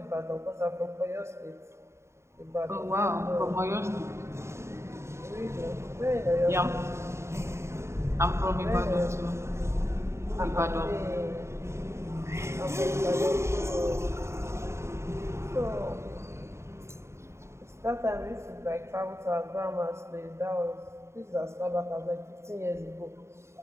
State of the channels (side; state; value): left; late; 0.13 ms